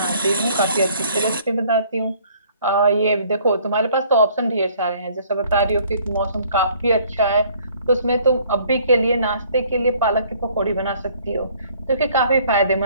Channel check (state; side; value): inverted; both; correlation -0.59